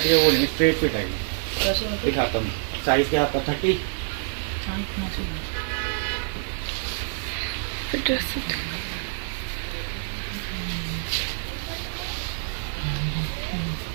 है, वो स्ट्रेट फिट है। दिखाता हूँ साइज क्या आपका 30।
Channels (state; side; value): silent; left; digital silence